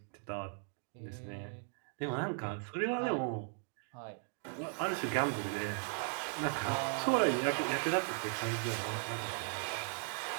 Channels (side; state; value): left; silent; 53 dB below the other